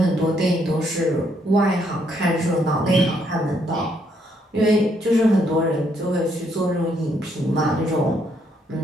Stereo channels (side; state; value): both; normal; correlation 0.72